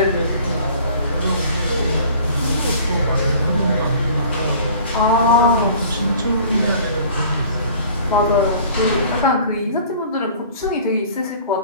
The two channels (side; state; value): both; inverted; correlation -0.49